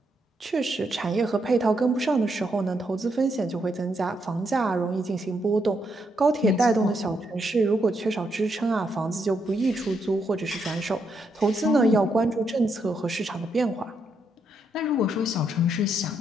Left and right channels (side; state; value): both; normal; correlation 0.78